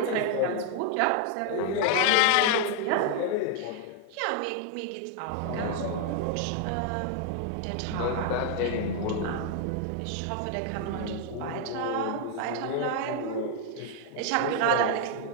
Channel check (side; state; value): both; different; correlation 0.00